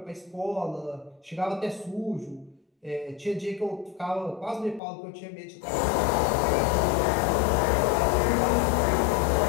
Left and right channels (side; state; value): right; drops out; at 4.8 s